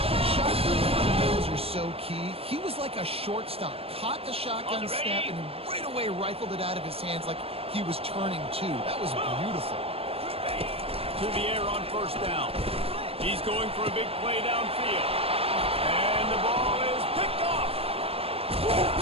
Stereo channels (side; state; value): left; late; 0.28 ms